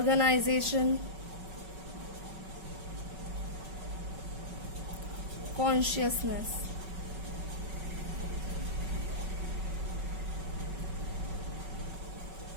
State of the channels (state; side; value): late; left; 5.3 ms